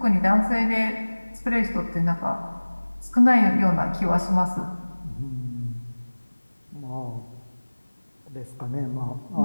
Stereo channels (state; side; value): inverted; both; correlation -1.00